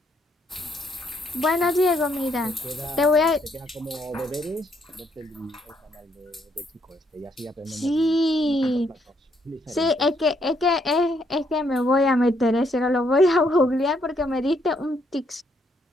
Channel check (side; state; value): both; normal; correlation 0.72